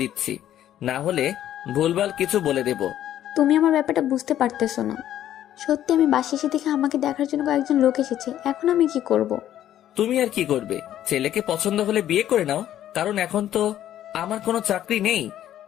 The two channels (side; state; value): right; quieter; 11.8 dB